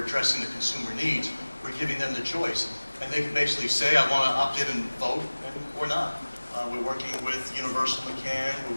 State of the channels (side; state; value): both; inverted; correlation -1.00